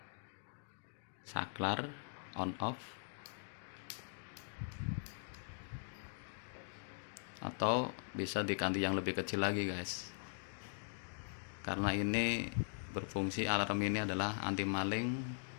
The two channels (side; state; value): right; silent; digital silence